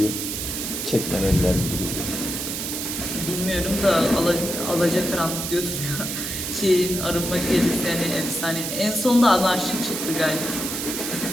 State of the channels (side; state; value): right; noise; hiss, 4 dB below the sound